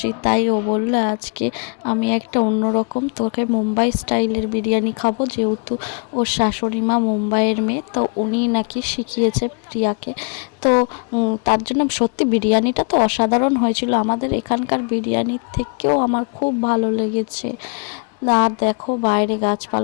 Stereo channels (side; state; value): right; quieter; 38.4 dB